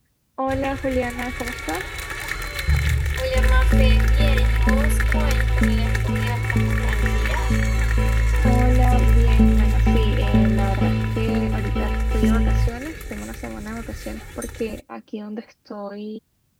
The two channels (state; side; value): identical; both; correlation 1.00